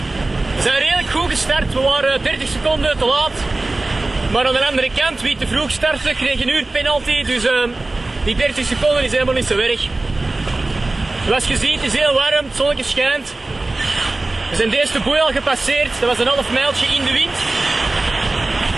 We zijn redelijk goed gestart, we waren 30 seconden te laat. Maar aan de andere kant, wie te vroeg startte, kreeg een uur penalty. Dus die 30 seconden is helemaal niet zo erg. Zoals je ziet, het is heel warm, het zonnetje schijnt. We zijn de eerste boei al gepasseerd, dat was een half mijltje in de wind.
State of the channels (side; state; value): left; quieter; 3.0 dB